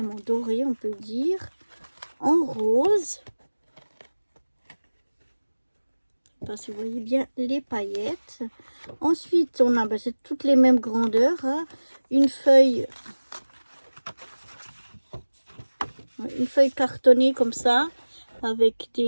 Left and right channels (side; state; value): both; inverted; correlation -1.00